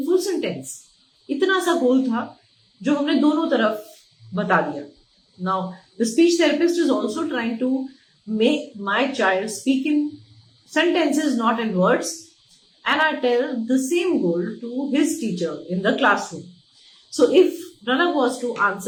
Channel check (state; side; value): identical; both; correlation 1.00